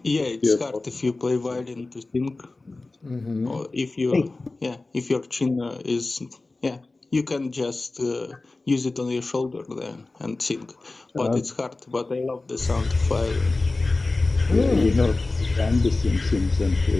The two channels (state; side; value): quieter; right; 3.3 dB